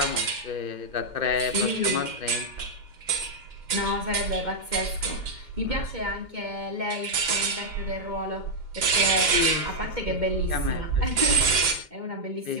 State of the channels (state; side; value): late; left; 2.1 ms